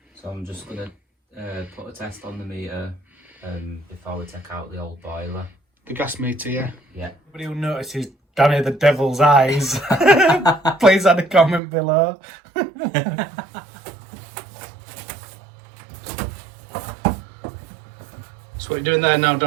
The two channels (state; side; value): drops out; left; at 11.6 s